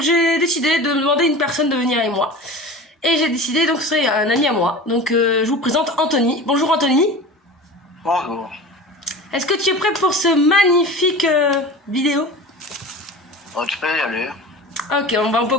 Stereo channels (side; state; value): both; normal; correlation 0.34